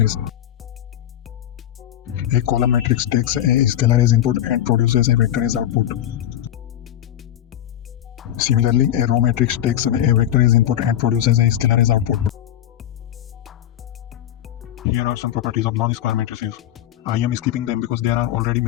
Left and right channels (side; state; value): right; quieter; 11.7 dB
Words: A column matrix takes a scalar as input and produces a vector as output. Similarly, a row matrix takes a vector as input and produces a scalar as output. Here are some properties of non-square matrices. I am skipping them because there are already